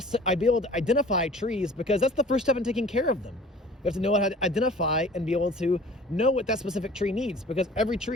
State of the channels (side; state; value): both; normal; correlation 0.47